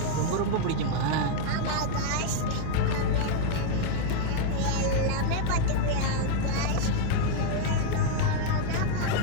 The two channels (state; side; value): different; both; correlation 0.00